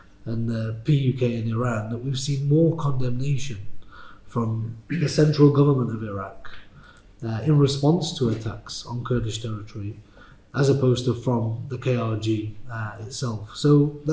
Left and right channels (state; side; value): identical; both; correlation 1.00